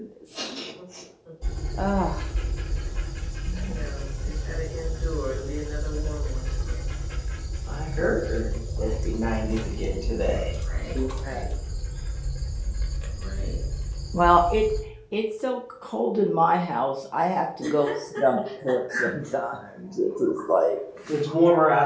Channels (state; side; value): identical; both; correlation 1.00